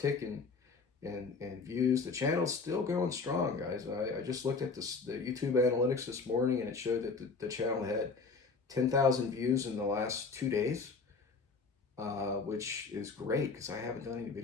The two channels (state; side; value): quieter; right; 4.5 dB